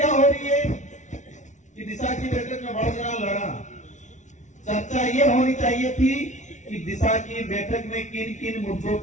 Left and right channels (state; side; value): late; right; 0.35 ms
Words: हो रही है कि दिशा की बैठक में बढ़ना लड़ा। चर्चा ये होनी चाहिए थी कि दिशा की बैठक में किन किन मुद्दों